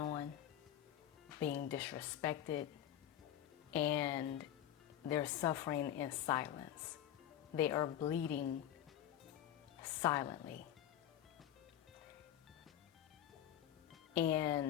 being disrespected, and they're suffering in silence. They are bleeding silently.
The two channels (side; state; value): right; quieter; 11.2 dB